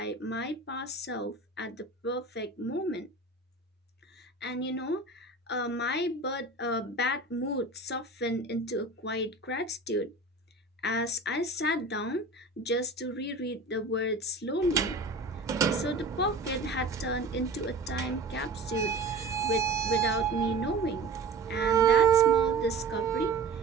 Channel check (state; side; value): quieter; left; 3.3 dB